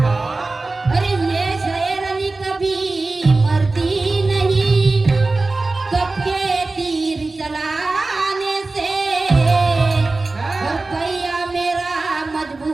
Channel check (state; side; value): quieter; left; 3.4 dB